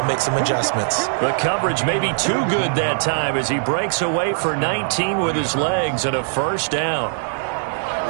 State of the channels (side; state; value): left; silent; digital silence